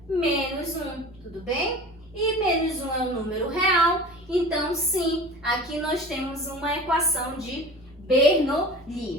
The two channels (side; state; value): both; normal; correlation 0.38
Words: menos 1, tudo bem? E menos 1 é um número real, então sim, aqui nós temos uma equação de